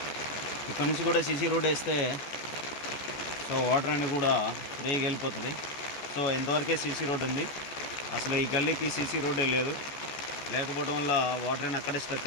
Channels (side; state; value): right; late; 14 ms